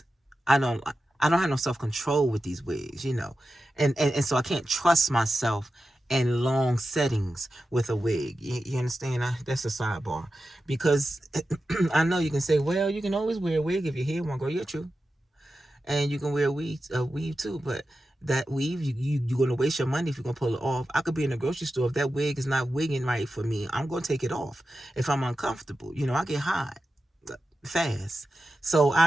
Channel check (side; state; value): both; normal; correlation 0.92